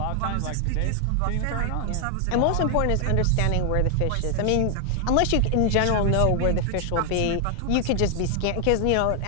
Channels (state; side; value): different; both; correlation 0.00